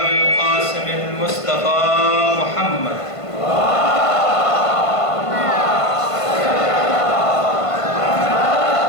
القاسم المصطفى محمد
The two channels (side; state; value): right; late; 1.5 ms